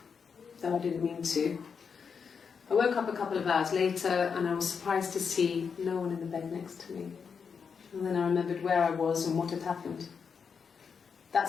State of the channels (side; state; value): right; quieter; 6.1 dB